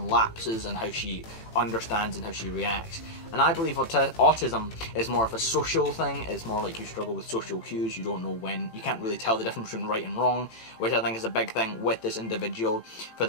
lapses in how she understands and how she reacts. And I believe autism is more of a social thing. It's more like you struggle with social cues. You don't know when. You can't really tell the difference between right and wrong, which I think is a big thing with this individual. For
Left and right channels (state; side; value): late; right; 18 ms